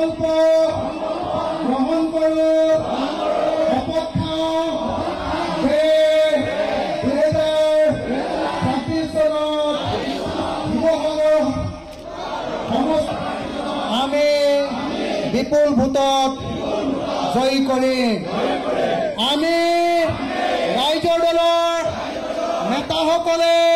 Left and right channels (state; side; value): identical; both; correlation 1.00